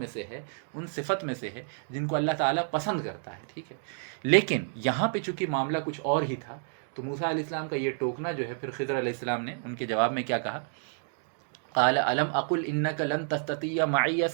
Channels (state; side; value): silent; left; 58 dB below the other